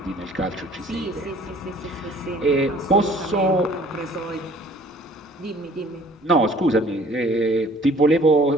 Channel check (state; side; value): normal; both; correlation 0.54